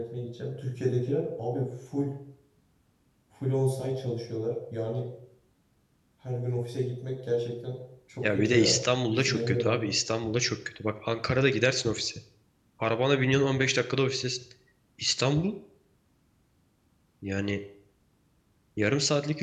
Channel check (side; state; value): both; identical; correlation 1.00